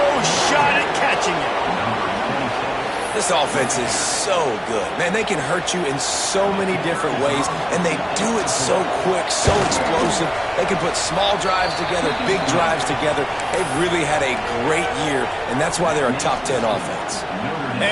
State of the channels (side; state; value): both; identical; correlation 1.00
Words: shot at catching him. This offense is so good. Man, they can hurt you in so many different ways, and they do it so quick, so explosive. They can put small drives together, big drives together. They've really had a great year, and that's why they're a top 10 offense.